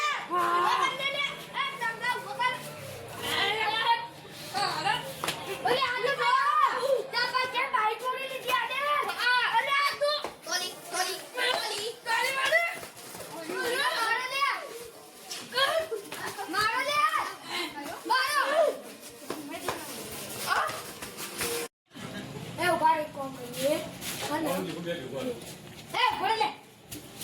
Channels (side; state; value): both; identical; correlation 1.00